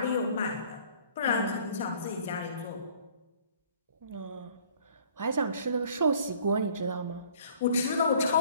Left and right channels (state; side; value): inverted; both; correlation -0.54